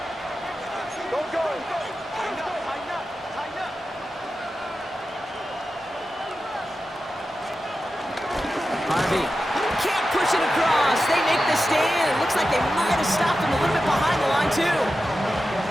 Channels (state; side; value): normal; both; correlation 0.92